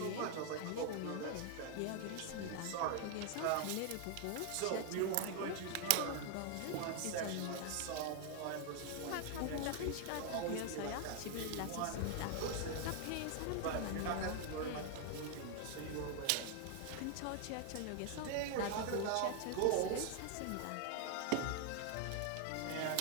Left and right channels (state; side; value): different; both; correlation 0.00